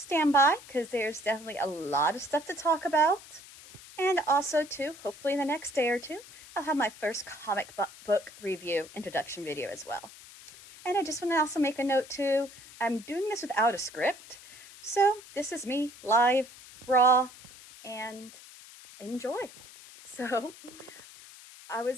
by, because there's definitely a lot of stuff to talk about. And also, too, hopefully in the next day or two, I'll have my first comic book review introduction video as well. And I just want to also make a note too, I'm doing this without a script, so this is me live, raw, and enjoy. So I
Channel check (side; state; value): left; noise; hiss, 19 dB below the sound